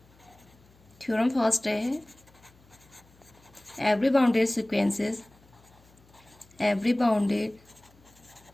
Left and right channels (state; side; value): noise; left; hum, 28 dB below the sound